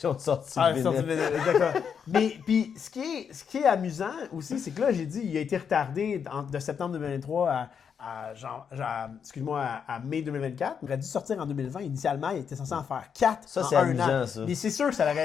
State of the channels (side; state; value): right; quieter; 7.1 dB